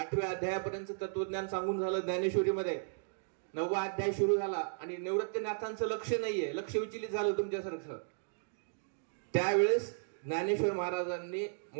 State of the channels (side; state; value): left; silent; digital silence